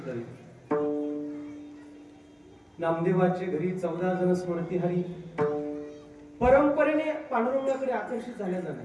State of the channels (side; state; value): both; identical; correlation 1.00